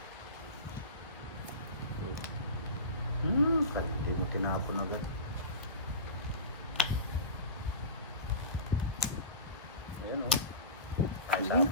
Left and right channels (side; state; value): both; inverted; correlation -0.30